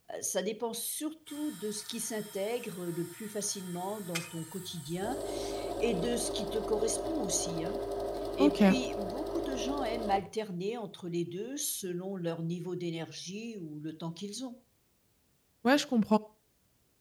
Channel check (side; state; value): both; identical; correlation 1.00